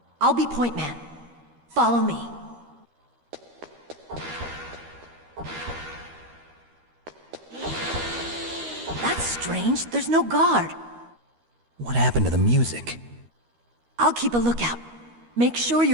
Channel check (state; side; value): late; left; 13 ms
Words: I'll be point man. Follow me. That's strange. There's no guard. What happened to the music? I'll keep a lookout. Make sure